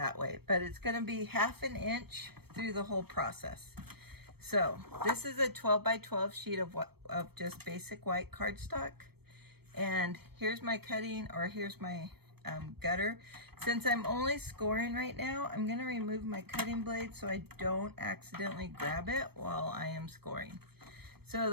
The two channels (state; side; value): late; left; 0.97 ms